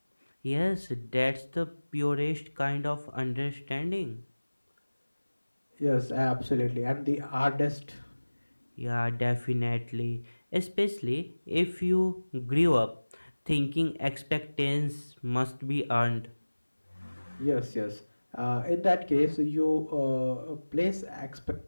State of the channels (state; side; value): inverted; both; correlation -1.00